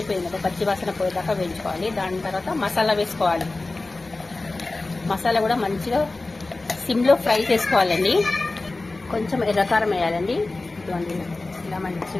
పచ్చి వాసన పోయేదాకా వేయించుకోవాలి. దాని తర్వాత మసాలా వేసుకోవాలి. మసాలా కూడా మంచిగా సిమ్ లో ఫ్రై చేసుకోవాలండి. కొంచెం ఎర్రకారం వేయాలండి. ఇటువంటి ఇలా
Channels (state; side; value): quieter; right; 3.2 dB